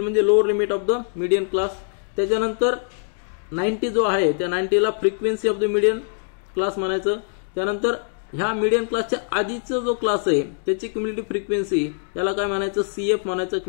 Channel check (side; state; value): right; silent; digital silence